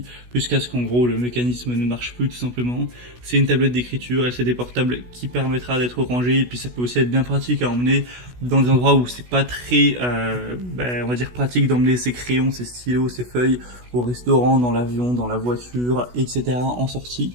jusqu'à ce qu'en gros le mécanisme ne marche plus tout simplement. C'est une tablette d'écriture LCD portable qui permettra d'être rangée, et puis ça peut aussi être bien pratique à emmener dans des endroits où c'est pas très, on va dire pratique d'emmener ses crayons, ses stylos, ses feuilles au restaurant, dans l'avion, dans la voiture, etc. en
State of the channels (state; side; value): late; left; 16 ms